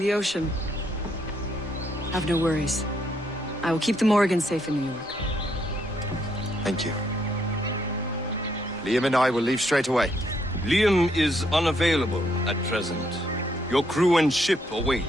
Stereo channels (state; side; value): normal; both; correlation 0.73